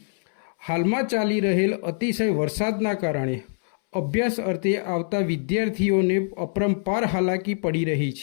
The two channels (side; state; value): right; silent; 62 dB below the other